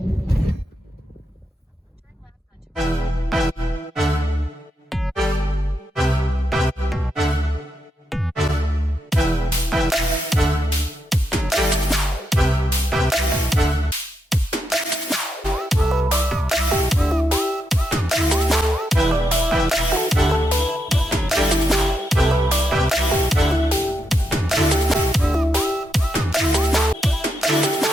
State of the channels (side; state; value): both; normal; correlation 0.83